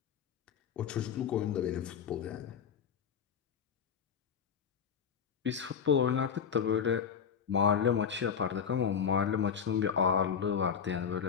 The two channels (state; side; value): quieter; right; 7.3 dB